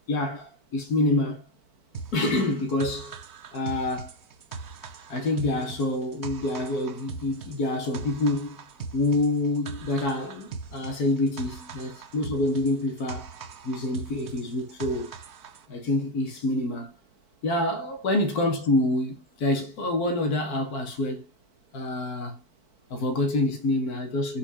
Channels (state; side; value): late; right; 4.5 ms